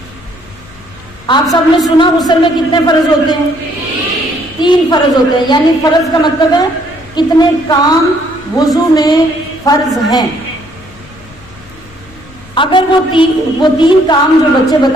آپ سب نے سنا غسل میں کتنے فرض ہوتے ہیں؟ 3 فرض ہوتے ہیں، یعنی فرض کا مطلب ہے کتنے کام وضو میں فرض ہیں۔ اگر وہ 3 کام جو بچے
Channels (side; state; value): left; noise; rumble, 24 dB below the sound